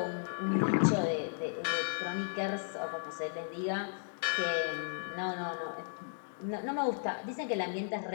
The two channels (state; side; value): silent; right; digital silence